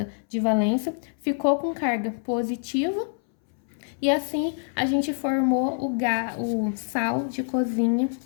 de valência, ficou com carga positiva. E assim a gente formou o sal de cozinha,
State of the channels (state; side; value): silent; right; 61 dB below the other